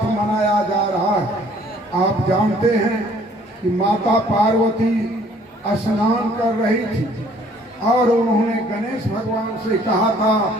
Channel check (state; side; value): normal; both; correlation 0.58